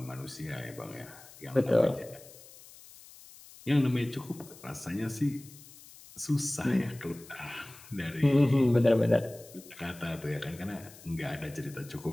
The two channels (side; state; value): left; noise; hiss, 20 dB below the sound